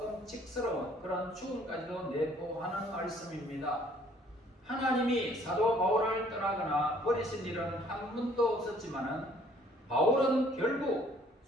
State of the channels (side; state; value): both; normal; correlation 0.60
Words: 그런 죽음까지도 내포하는 말씀입니다. 하나님이 사도 바울을 떠나거나 버리신 일은 한 번도 없었지만은 바울은 결국